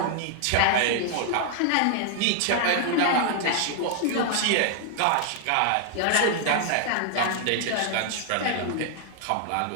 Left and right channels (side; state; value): both; different; correlation 0.00